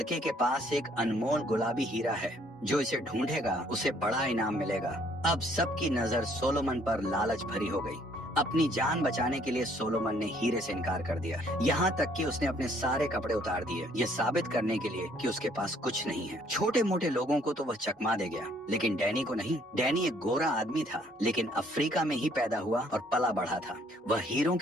के पास एक अनमोल गुलाबी हीरा है। जो इसे ढूंढेगा उसे बड़ा इनाम मिलेगा। अब सबकी नजर सोलोमन पर लालच भरी हो गई। अपनी जान बचाने के लिए सोलोमन ने हीरे से इनकार कर दिया। यहाँ तक कि उसने अपने सारे कपड़े उतार दिए, ये साबित करने के लिए कि उसके पास कुछ नहीं है। छोटे मोटे लोगों को तो वह चकमा दे गया, लेकिन डैनी को नहीं। डैनी एक गोरा आदमी था, लेकिन अफ्रीका में ही पैदा हुआ और पला बढ़ा था। वह हीरों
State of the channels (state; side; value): normal; both; correlation 0.63